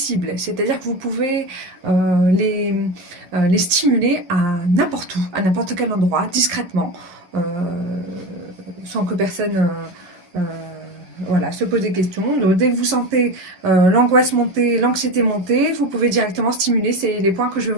c'est-à-dire que vous pouvez les stimuler à n'importe où, à n'importe quel endroit, discrètement, sans que personne voilà, se pose des questions. Donc, dès que vous sentez l'angoisse monter, l'anxiété monter, vous pouvez directement stimuler. C'est les points que je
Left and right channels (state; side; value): late; left; 11 ms